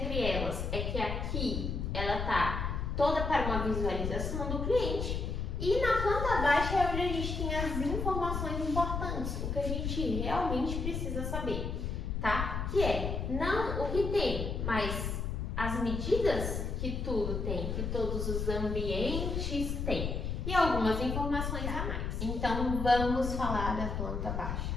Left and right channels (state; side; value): noise; left; rumble, 2 dB below the sound